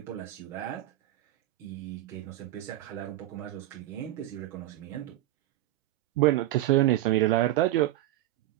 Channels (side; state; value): left; quieter; 15.0 dB